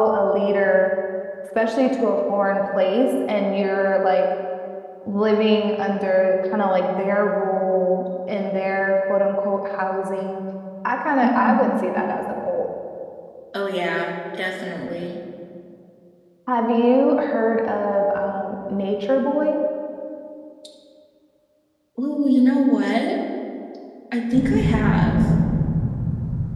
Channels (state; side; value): identical; both; correlation 1.00